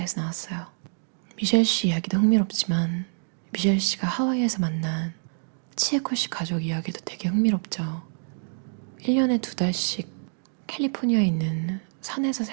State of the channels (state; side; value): silent; left; 61 dB below the other